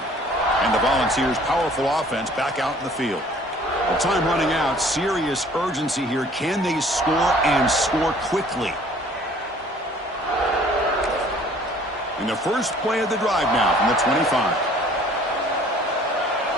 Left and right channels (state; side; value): normal; both; correlation 0.54